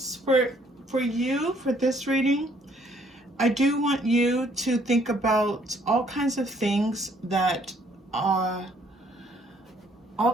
for you for this reading, I do want you to think about all kinds of things that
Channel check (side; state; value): both; normal; correlation 0.64